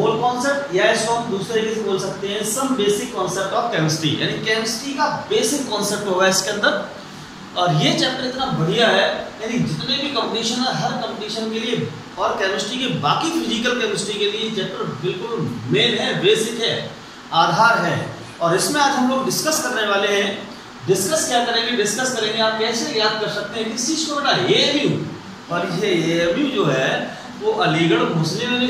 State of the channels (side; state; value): both; identical; correlation 1.00